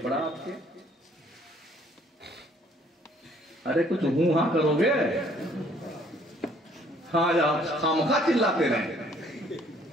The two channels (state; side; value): normal; both; correlation 0.61